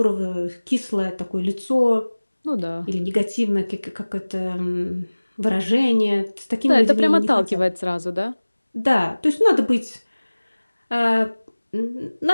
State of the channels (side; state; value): both; inverted; correlation -1.00